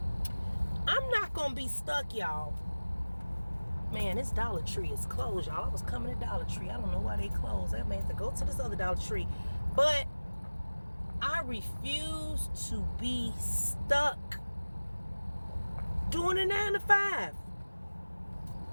I'm not going to be stuck, y'all. Man, this Dollar Tree is closed, y'all. I was coming to Dollar Tree. I don't know why they closed. I may have to go to this other Dollar Tree. But I refuse to be stuck doing a 9 to 5.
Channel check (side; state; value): both; inverted; correlation -1.00